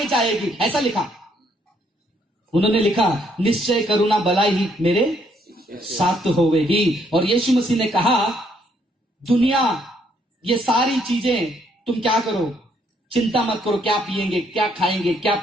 जाएगी, ऐसा लिखा। उन्होंने लिखा, निश्चय करुणा भलाई मेरे साथ होवेगी। और यीशु मसीह ने कहा, दुनिया ये सारी चीजें तुम क्या करो, चिंता मत करो, क्या पिएंगे, क्या खाएंगे, क्या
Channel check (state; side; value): normal; both; correlation 0.70